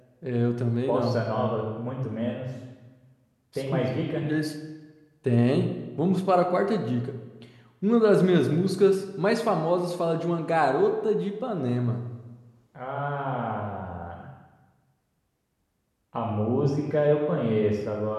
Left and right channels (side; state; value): both; identical; correlation 1.00